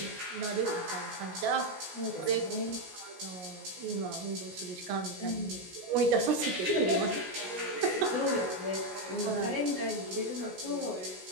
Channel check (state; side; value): late; left; 17 ms